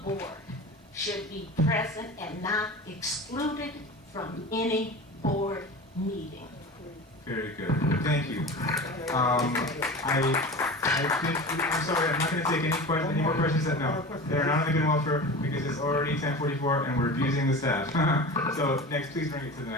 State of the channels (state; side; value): normal; both; correlation 0.33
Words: should be present and not excluded from any board meeting. Very good. Thank you. I think, I'm sorry, I'm not going to take any more questions. No, they're not on the good and welfare because it's already 10:44 and we're abusing the staff. So next, please bring it to the